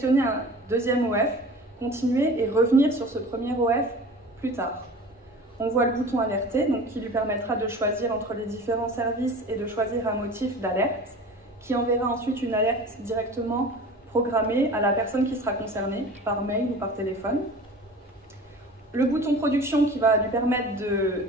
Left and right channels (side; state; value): both; normal; correlation 0.39